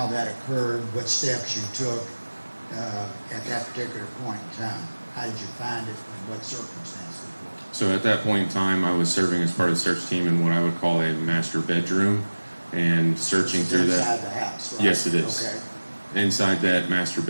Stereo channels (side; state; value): both; inverted; correlation -1.00